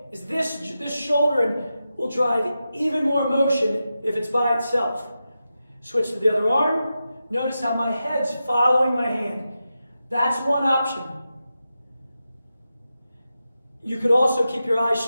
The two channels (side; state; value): both; inverted; correlation -0.90